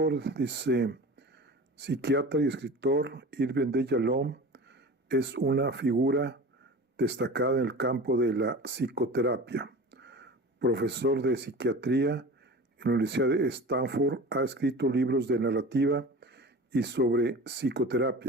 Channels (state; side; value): normal; both; correlation 0.35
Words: Dice, psiquiatra y escritor Irving de Yalom es una figura destacada en el campo de la psicoterapia. Profesor de psiquiatría en la Universidad de Stanford, ha escrito libros de narrativa y sobre